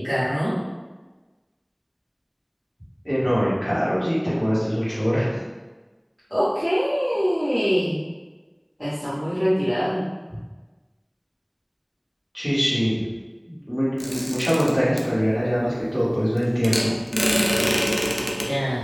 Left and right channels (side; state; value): both; identical; correlation 1.00